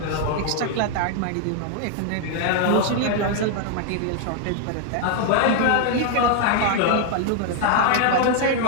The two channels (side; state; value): both; different; correlation 0.00